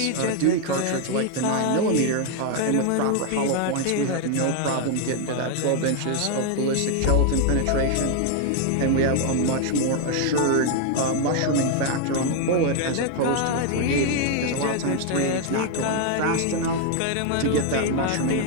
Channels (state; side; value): different; both; correlation 0.01